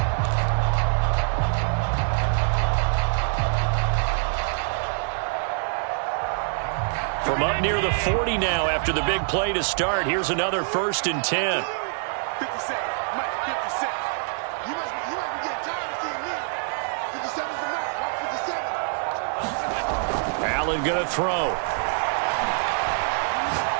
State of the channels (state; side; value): silent; left; 56 dB below the other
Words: From up near the 40 now after the big play to start. Here's another 1st and 10. 57, Mike, 57. You must be getting tired of seeing me. 57's the Mike, Mike 57. Allen going to throw.